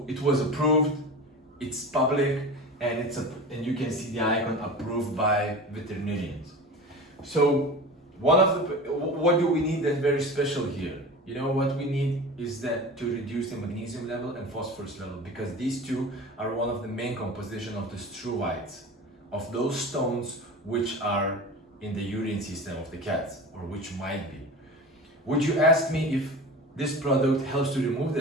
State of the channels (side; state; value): both; normal; correlation 0.33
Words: it was approved, it's public, and and you can see the icon approved by veterinarians. So what do we need that's very special here? What we need is that to reduce the magnesium level and phosphorus level, because these two are one of the main composition of the struvites, of those stones which are in the urine system of the cats, or which might be. Would you ask me if this product helps to remove